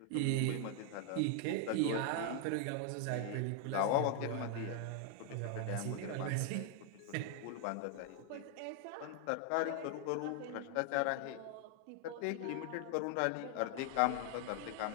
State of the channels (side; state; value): both; different; correlation 0.00